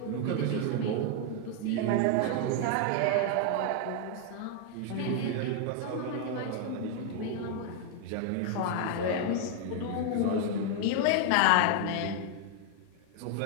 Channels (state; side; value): different; both; correlation 0.00